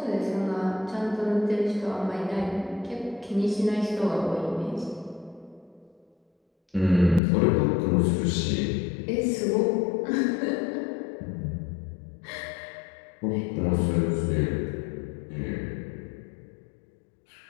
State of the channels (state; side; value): drops out; right; at 7.2 s